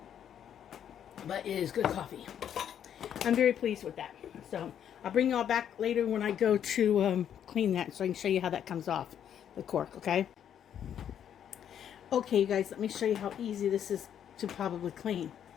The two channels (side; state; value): right; quieter; 9.4 dB